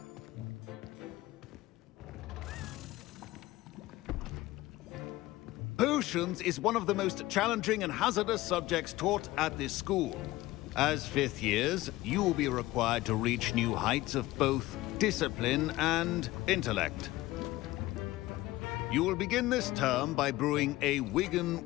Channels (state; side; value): quieter; right; 17.8 dB